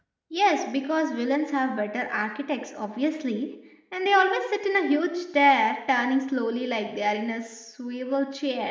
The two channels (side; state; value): both; identical; correlation 1.00